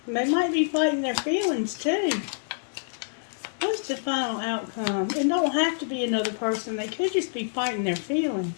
And they might be fighting their feelings too. What's the final outcome? It don't have to be another person. They could just be fighting their feelings.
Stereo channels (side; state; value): right; silent; digital silence